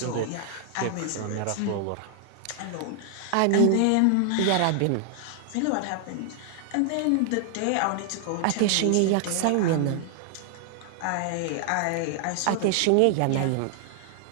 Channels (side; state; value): both; different; correlation 0.00